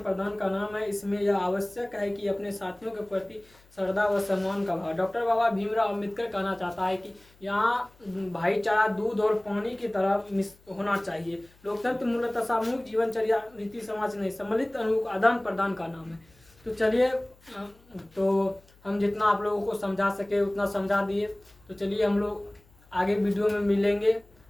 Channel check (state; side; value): noise; left; hum, 29 dB below the sound